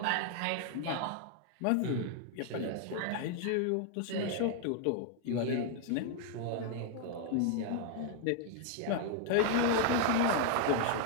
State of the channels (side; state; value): both; different; correlation 0.00